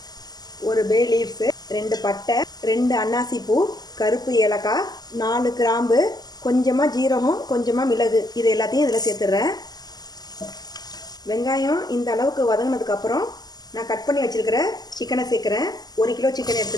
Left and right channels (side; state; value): right; late; 0.20 ms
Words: ஒரு பே லீவ்ஸு, 2 பட்டை, 2 அன்னாசி பூ, கருப்பு ஏலக்காய், 4 கிராம்பு, கொஞ்சமாக ஜீரகம், கொஞ்சமாக மிளகு, இது எல்லாத்தையும் இதில் சேர்த்துடுறேன். வெங்காயம் இந்த அளவுக்கு வதங்கினதுக்கப்புறம் நான் கட் பண்ணி வச்சுருக்கிற சிக்கனை சேர்க்குறேன். 1 கிலோ சிக்கன்